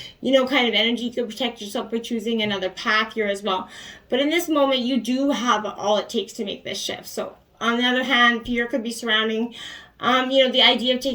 kind of energy. You can protect yourself by choosing another path here as well. But in this moment, you do have all it takes to make this shift. So, on the other hand, fear could be surrounding the idea of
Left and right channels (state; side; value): identical; both; correlation 1.00